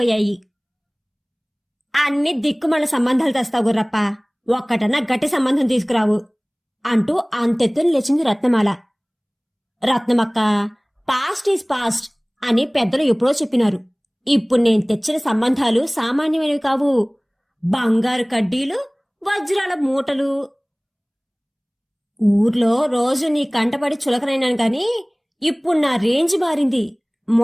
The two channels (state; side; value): identical; both; correlation 1.00